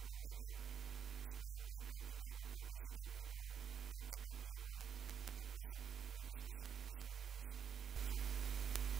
Permenhan. Supaya mereka tidak ada pergesekan di dalam perti-perti yang lain, termasuk Universitas Kristen Indonesia. Komcat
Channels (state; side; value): quieter; left; 7.7 dB